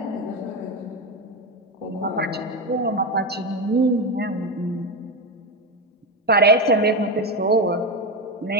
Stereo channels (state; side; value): normal; both; correlation 0.14